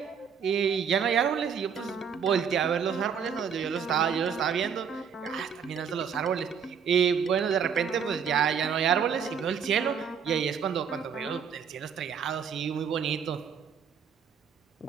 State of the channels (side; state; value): left; quieter; 7.1 dB